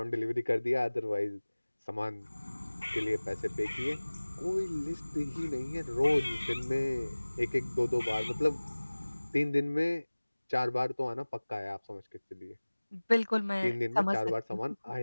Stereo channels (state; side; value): inverted; both; correlation -1.00